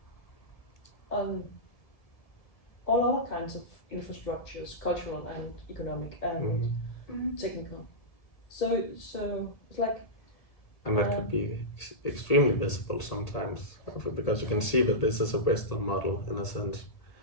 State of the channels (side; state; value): right; late; 1.8 ms